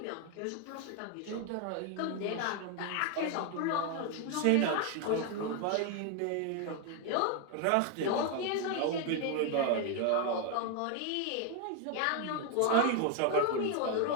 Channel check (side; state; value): both; different; correlation 0.00